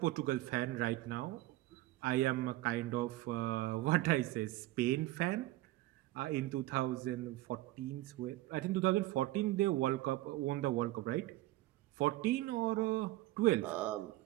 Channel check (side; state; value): left; quieter; 17.4 dB